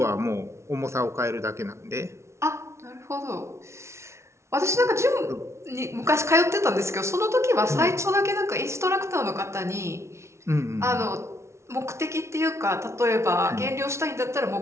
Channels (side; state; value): left; late; 0.13 ms